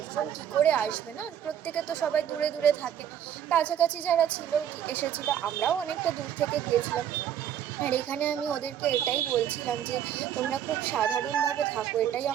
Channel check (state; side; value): quieter; left; 9.8 dB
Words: কী করে আসবে, না প্রত্যেকে তো সবাই দূরে দূরে থাকে। কাছাকাছি যারা ছিল এসেছিলো, আমরাও অনেকটা দূর থেকে গিয়েছিলাম। আর এখানে আমি ওদেরকে এটাই বলছিলাম যে তোমরা খুব সাধারণভাবে থাকো, এটাই